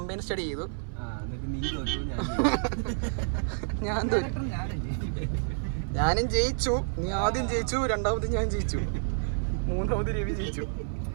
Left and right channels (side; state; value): left; silent; 57 dB below the other